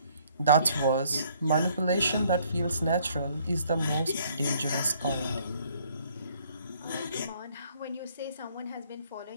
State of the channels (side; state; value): both; inverted; correlation -0.63